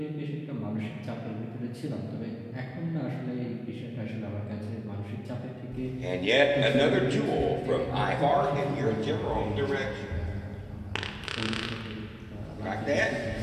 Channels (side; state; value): both; identical; correlation 1.00